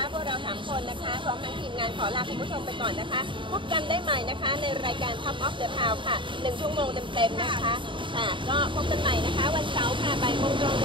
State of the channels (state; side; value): late; left; 0.24 ms